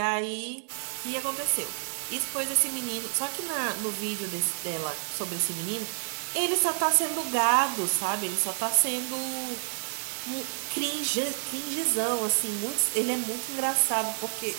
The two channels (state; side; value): silent; left; digital silence